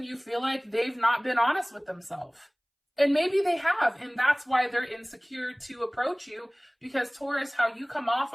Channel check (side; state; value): both; identical; correlation 1.00